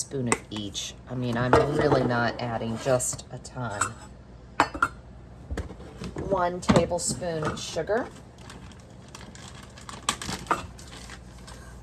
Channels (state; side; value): identical; both; correlation 1.00